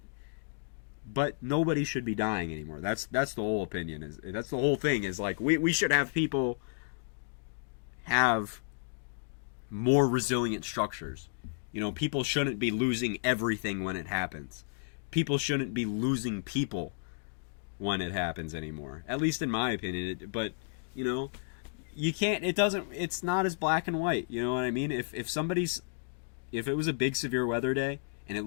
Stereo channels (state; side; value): silent; right; digital silence